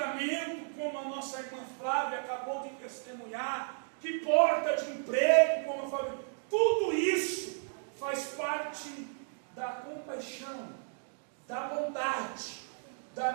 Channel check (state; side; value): silent; left; digital silence